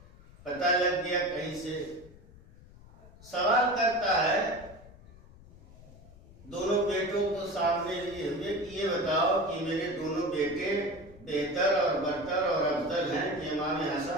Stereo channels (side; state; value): left; noise; rumble, 21 dB below the sound